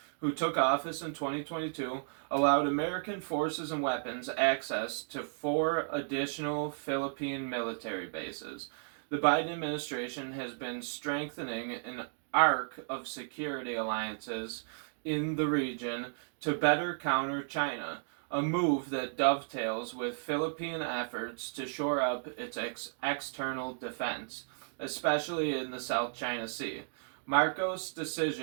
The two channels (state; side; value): silent; left; digital silence